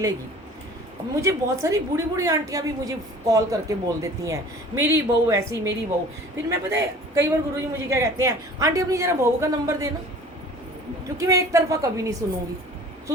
अब मुझे बहुत सारी बूढ़ी बूढ़ी आंटियाँ भी मुझे कॉल करके बोल देती हैं, मेरी बहू ऐसी, मेरी बहू। फिर मैं, पता है कई बार गुरुजी मुझे क्या कहते हैं, आंटी अपनी ज़रा बहू का नंबर देना, क्योंकि मैं एक तरफा कभी नहीं सुनूंगी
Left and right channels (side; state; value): both; normal; correlation 0.46